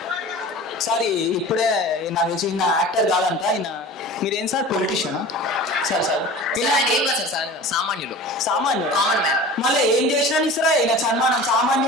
సార్ ఇప్పుడే నాకు తెలిసి ఈయన యాక్టర్ కాదంట. మీరేం సార్ పొలిటీషియనా? సార్ ఆయన ఏం కాదు సార్, సామాన్యులు. సామాన్యుడు, కామన్ మ్యాన్. మళ్ళీ ఏం చేసినా ఇస్తారా ఈయన సన్మానం?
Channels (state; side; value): normal; both; correlation 0.38